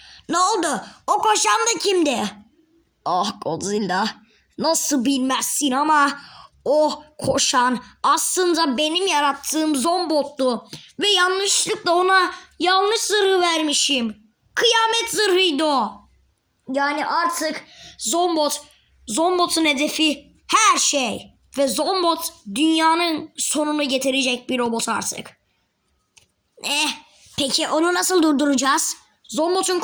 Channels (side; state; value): both; identical; correlation 1.00